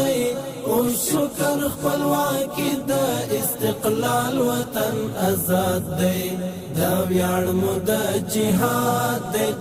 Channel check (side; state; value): both; identical; correlation 1.00